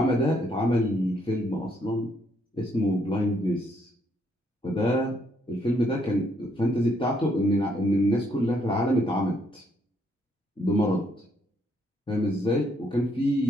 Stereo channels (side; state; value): both; normal; correlation 0.71